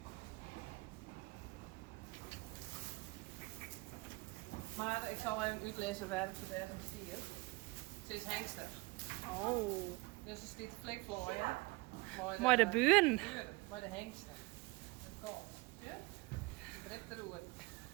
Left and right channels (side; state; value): left; quieter; 24.7 dB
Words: Maar ik zal even uitlezen waarom ze daar geen stier. Ze is hengstig. Oh. Dus er staat flikvlooien. Maar de buren. Maar de hengsten. Het kalf. Ja? De dript de roer.